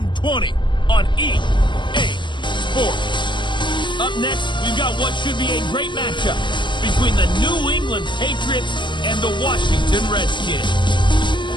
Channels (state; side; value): late; right; 0.23 ms